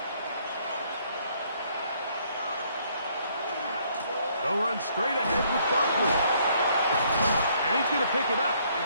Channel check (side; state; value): both; inverted; correlation -0.66